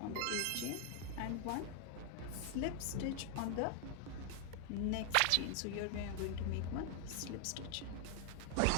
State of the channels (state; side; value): different; both; correlation 0.00